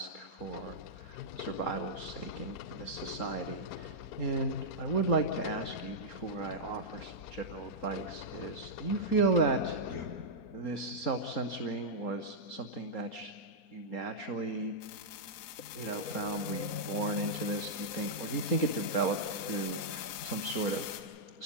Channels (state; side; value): late; right; 4.3 ms